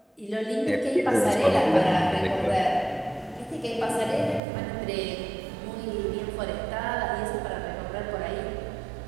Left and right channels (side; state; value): left; drops out; at 4.4 s